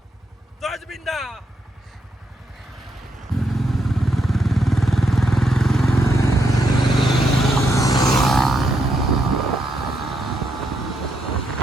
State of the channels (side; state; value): both; normal; correlation 0.78